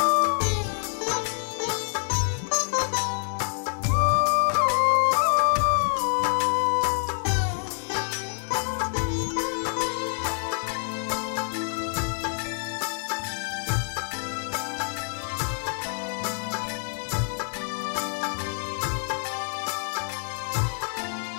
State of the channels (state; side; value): silent; right; 60 dB below the other